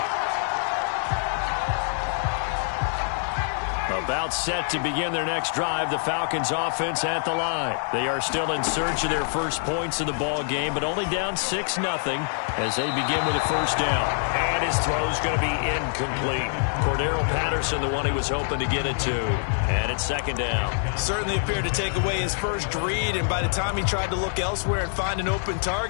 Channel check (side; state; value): right; silent; digital silence